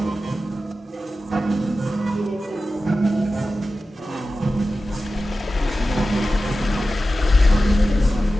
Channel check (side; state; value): both; normal; correlation 0.93